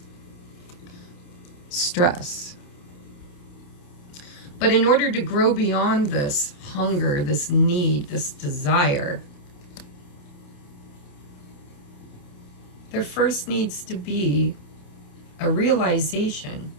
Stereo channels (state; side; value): late; right; 28 ms